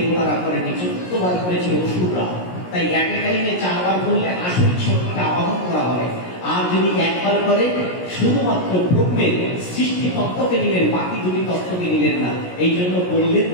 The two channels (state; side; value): late; right; 17 ms